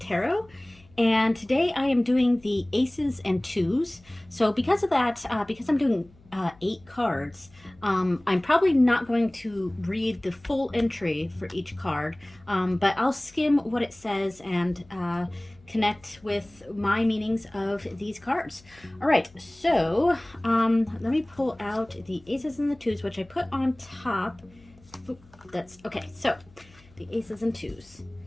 Tarot. And today I am doing the aces and twos. So because of that, because I'm doing 8 cards, I'm probably not going to read the full entry for each card, but I'll skim what it says and connect with my meanings of these cards. All right, so let me pull out the aces and the twos, which I put on top. Oop, that's okay. So the aces and twos.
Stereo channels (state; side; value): noise; left; hum, 27 dB below the sound